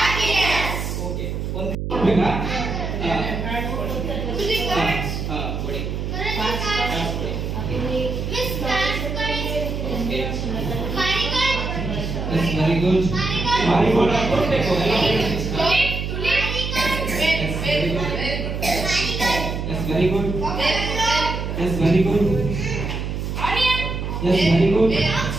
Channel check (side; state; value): right; noise; hum, 4 dB below the sound